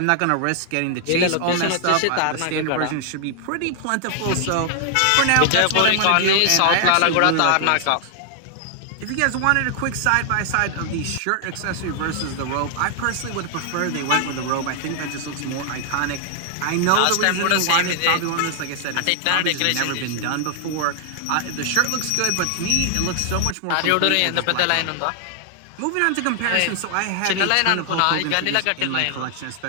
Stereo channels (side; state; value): both; different; correlation 0.00